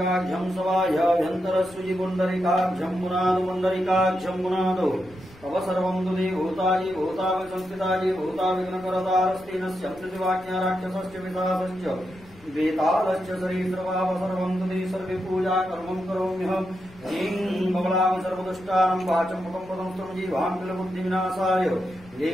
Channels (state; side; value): noise; left; rumble, 23 dB below the sound